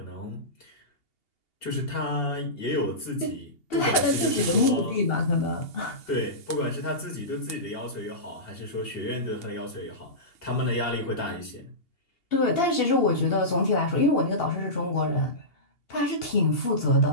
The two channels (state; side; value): late; right; 2.8 ms